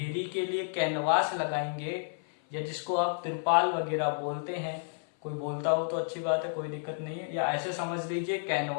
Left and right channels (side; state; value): right; silent; 57 dB below the other